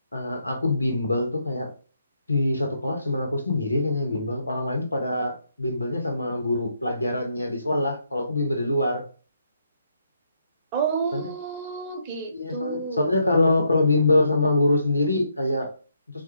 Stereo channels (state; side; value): inverted; both; correlation -0.76